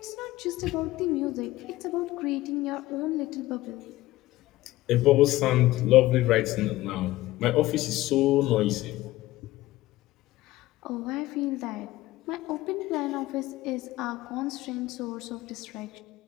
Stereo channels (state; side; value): quieter; right; 17.1 dB